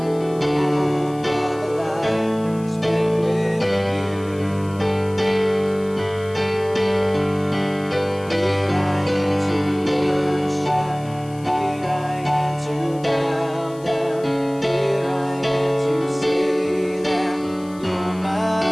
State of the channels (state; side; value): noise; left; hiss, 24 dB below the sound